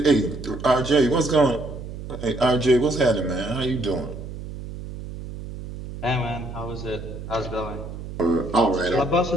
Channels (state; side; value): noise; right; hum, 10 dB below the sound